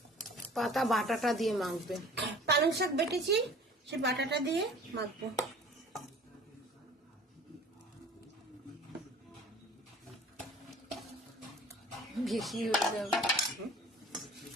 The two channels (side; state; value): both; normal; correlation 0.47